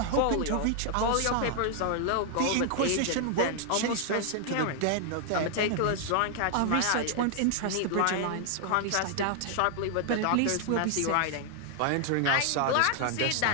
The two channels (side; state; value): both; different; correlation 0.00